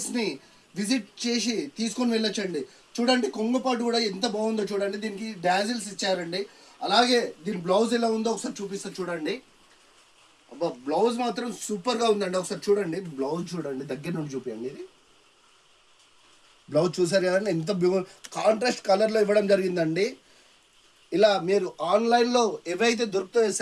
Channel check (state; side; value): identical; both; correlation 1.00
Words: విజిట్ చేసి తీసుకొని వెళ్ళొచ్చండి. చూడండి, కొంగుపాటు కూడా ఎంత బాగుందో చూడండి. దీనికి డాజిల్స్ ఇచ్చారండి. అలాగే దీని బ్లౌజ్ ఎలా ఉందో ఒకసారి చూపిస్తా చూడండి. అబ్బా, బ్లౌజ్ మాత్రం సూపర్గా ఉందండి. ఒకసారి చూడండి, బ్లౌజ్ చూడండి, దగ్గర నుండి చూపించండి. ఇది బ్లౌజ్ చూసారు కదండి, ఎంత కాంట్రాస్ట్ కలర్లో ఇవ్వడం జరిగిందండి. ఇలా మీరు ఆన్లైన్లో ఏవైతే దొరుకుతాయో